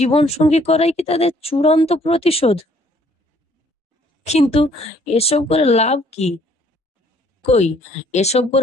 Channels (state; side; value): normal; both; correlation 0.62